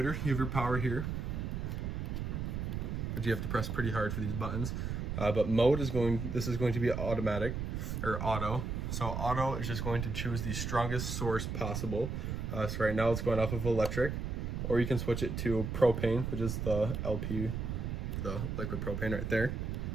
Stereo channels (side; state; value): right; noise; rumble, 3 dB below the sound